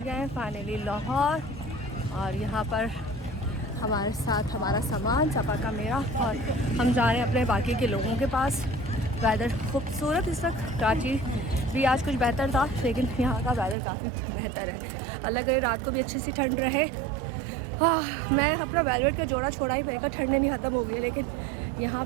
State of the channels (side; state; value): left; drops out; at 13.8 s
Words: गए फाइनली लाहौर और यहाँ पर हमारे साथ हमारा सामान सपा का मेरा, और हम जा रहे हैं अपने बाकी के लोगों के पास। वेदर खूबसूरत इस वक्त, कराची भी आज कुछ बेहतर था लेकिन यहाँ का वेदर काफ़ी बेहतर है। अलग है, रात को भी अच्छी सी ठंड रहे। हाँ, मैं अपना वेलवेट का जोड़ा छोड़ा ही, मेरे का ठंड नहीं ख़त्म हो गई है, लेकिन यहाँ